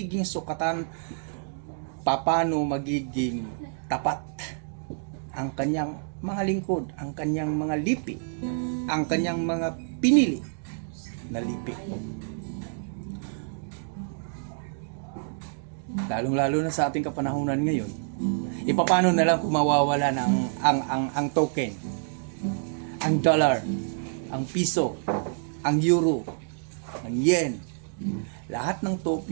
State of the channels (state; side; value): silent; left; digital silence